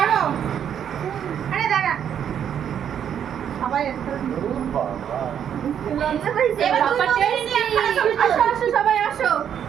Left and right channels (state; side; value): quieter; left; 8.9 dB